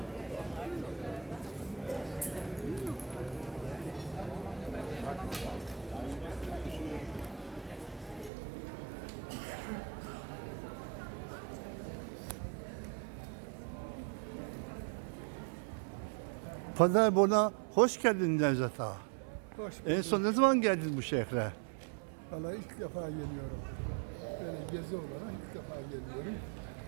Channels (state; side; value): drops out; left; at 8.3 s